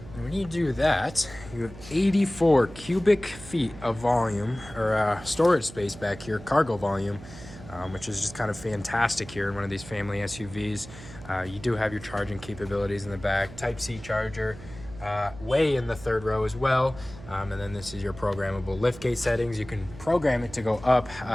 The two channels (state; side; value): noise; right; hum, 16 dB below the sound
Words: And when you do that, you have 84 cubic feet of volume, or storage space back here, cargo volume, which is just kind of fantastic here in one of these family SUVs. You do have your charging capabilities in the back, Type-C charger, way in the 3rd row as well. And then this is your programmable liftgate settings. You can program it to go up